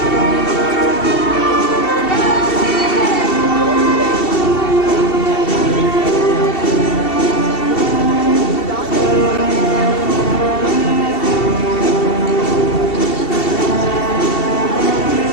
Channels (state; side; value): late; right; 2.7 ms